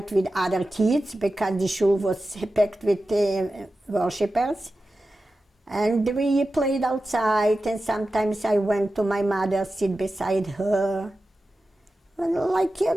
with other kids because the shul was packed with worshippers. And we played outside, and sometimes I went to my mother, sit beside her, like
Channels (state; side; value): normal; both; correlation 0.93